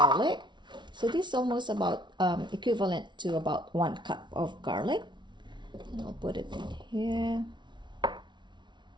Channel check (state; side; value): late; left; 0.23 ms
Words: So this is almost about equivalent to about 1 cup of garlic. And I'll put it in here.